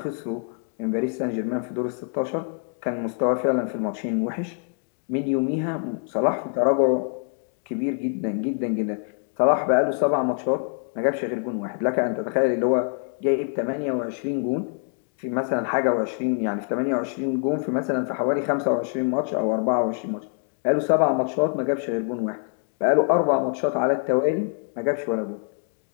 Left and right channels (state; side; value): silent; right; 56 dB below the other